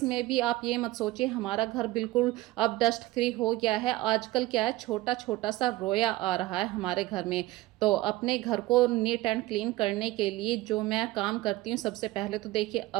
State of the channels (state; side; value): quieter; left; 17.9 dB